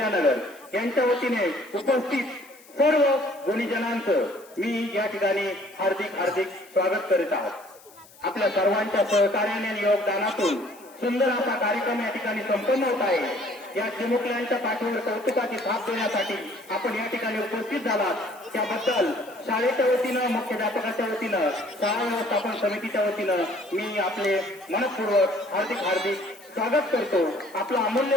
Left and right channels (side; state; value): left; noise; hiss, 24 dB below the sound